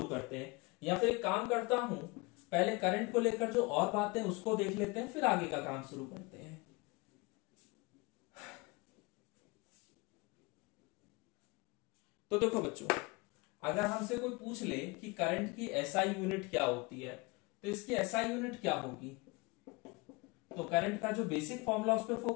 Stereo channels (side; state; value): right; quieter; 26.3 dB